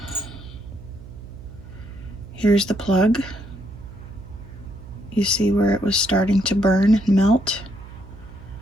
here's the plug. You see where it was starting to burn and melt,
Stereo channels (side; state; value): right; noise; hum, 16 dB below the sound